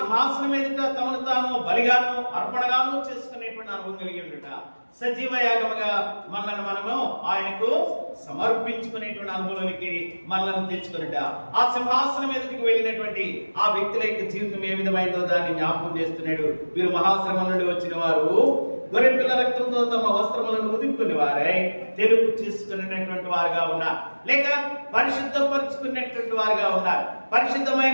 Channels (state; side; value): inverted; both; correlation -1.00